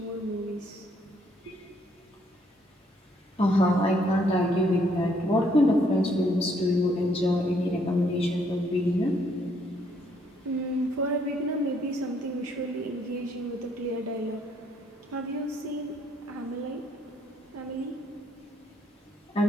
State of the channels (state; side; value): normal; both; correlation 0.68